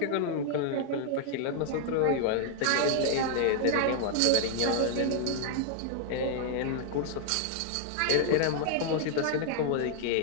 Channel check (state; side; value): different; both; correlation 0.00